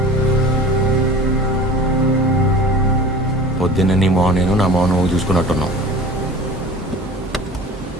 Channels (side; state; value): both; normal; correlation 0.41